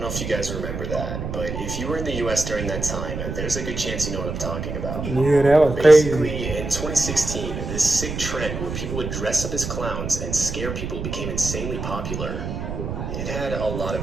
know if you guys remember that, but if you were in the US during that time, there's a good chance you know what I'm talking about. Yeah, that was Basically, crazy. in 2016, this sick trend where people would dress up as clowns and scare people became insanely popular. It had a lot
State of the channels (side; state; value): right; noise; rumble, 5 dB below the sound